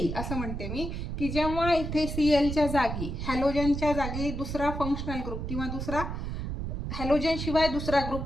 असं म्हणते मी की जेव्हा इथे Clच्या जागी हॅलोजनच्या जागी दुसरा फंक्शनल ग्रुप किंवा दुसरा हॅलोजन शिवाय दुसरा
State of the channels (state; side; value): noise; right; rumble, 4 dB below the sound